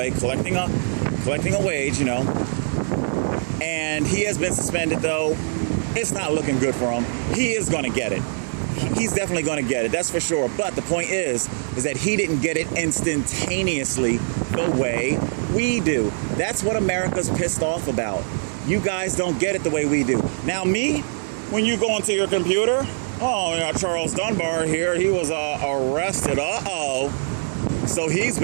collecting a wage, you know. And he has been suspended, though. It's not looking good for him. He is going to get it. He's definitely going to get it. That's for sure. But the point is that he didn't get it instantaneously the way we do. That's what America's pissed off about. You guys don't get it the way we do. Now me, when you go into your computer, oh, yeah, Charles Dunbar here, he was arrested. So he's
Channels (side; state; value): left; silent; digital silence